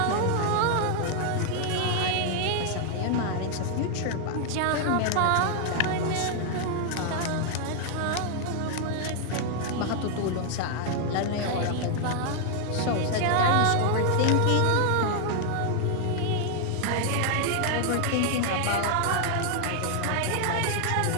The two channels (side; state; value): both; different; correlation 0.00